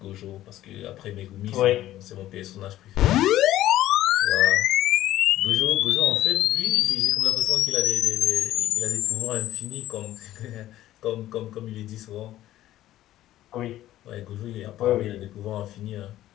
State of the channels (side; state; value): right; quieter; 14.0 dB